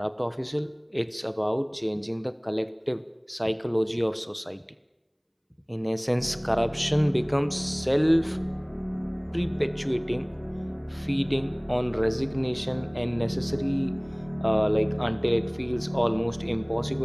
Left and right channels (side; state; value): both; identical; correlation 1.00